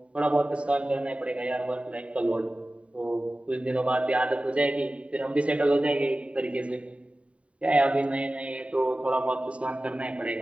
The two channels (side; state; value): left; late; 0.063 ms